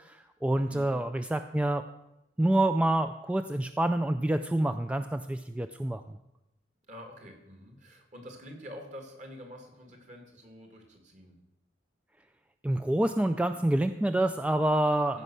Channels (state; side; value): normal; both; correlation 0.92